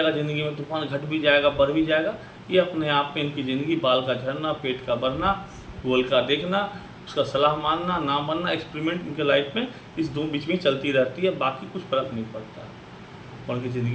ज़िंदगी में, तूफान घट भी जाएगा, बढ़ भी जाएगा। ये अपने आप में इनकी ज़िंदगी बाल का झड़ना, पेट का बढ़ना, गूगल का देखना, उसका सलाह मानना, ना मानना, एक्सपेरिमेंट इनके लाइफ में इस दो बीच में चलती रहती है। बाकी कुछ फ़र्क नहीं पड़ता है। और उनकी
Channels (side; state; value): both; identical; correlation 1.00